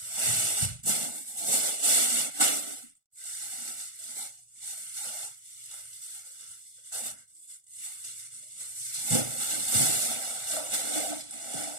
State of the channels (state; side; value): late; left; 1.4 ms